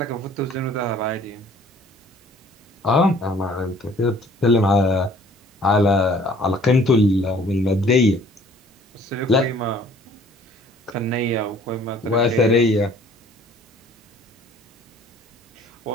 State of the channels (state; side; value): normal; both; correlation 0.54